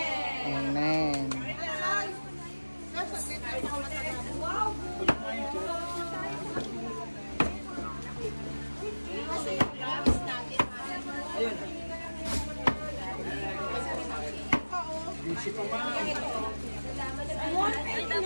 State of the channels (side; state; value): both; inverted; correlation -1.00